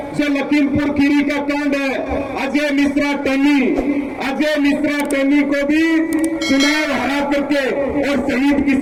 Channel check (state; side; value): identical; both; correlation 1.00